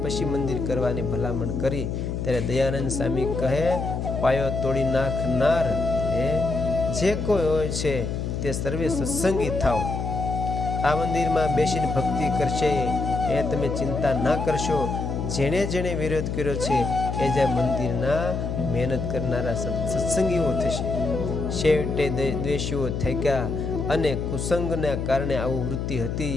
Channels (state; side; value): noise; left; hum, 3 dB below the sound